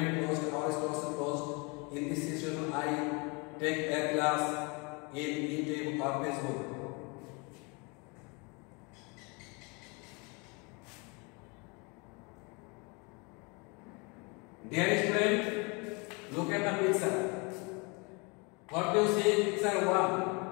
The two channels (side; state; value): right; quieter; 30.2 dB